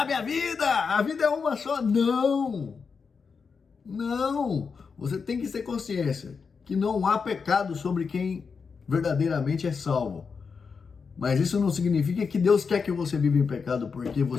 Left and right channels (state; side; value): quieter; right; 5.5 dB